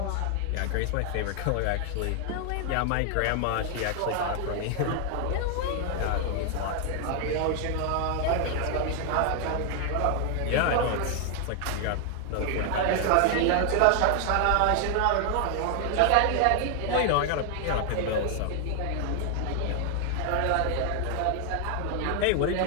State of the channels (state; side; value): different; both; correlation 0.00